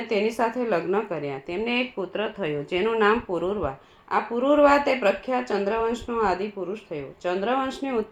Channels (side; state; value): both; identical; correlation 1.00